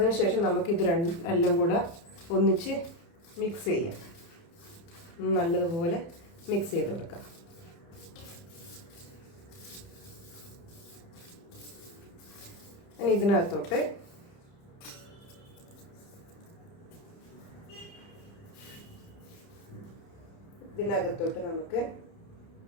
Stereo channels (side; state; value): right; late; 30 ms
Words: നമുക്കിത് എല്ലാം കൂടെ ഒന്നിച്ച് മിക്സ് ചെയ്യാം. നല്ലതുപോലെ മിക്സ് ചെയ്ത് കൊടുക്കാം. ഇനി ഇതിനകത്തോട്ട് നമുക്ക്